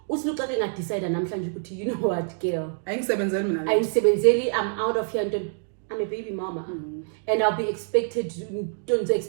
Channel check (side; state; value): left; silent; digital silence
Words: I decide, you know what, girl? I'm out of here. I'm I'm a baby mama. And I'll be expected, don't